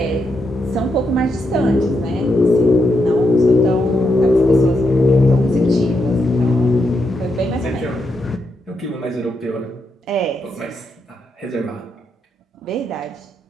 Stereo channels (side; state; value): both; normal; correlation 0.82